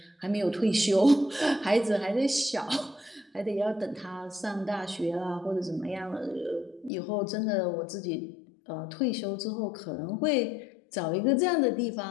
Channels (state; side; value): drops out; right; at 6.9 s